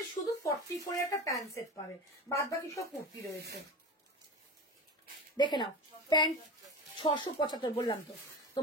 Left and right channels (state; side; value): normal; both; correlation 0.29